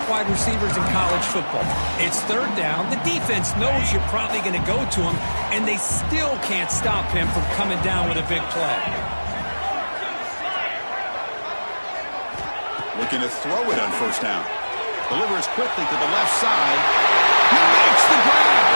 wide receivers in college football. It's third down. The defense knows you're probably going to go to him, and they still can't stop him from coming down with a big play. Looking to throw it on first down. Delivers quickly to the left side. He makes the grab.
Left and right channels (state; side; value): inverted; both; correlation -1.00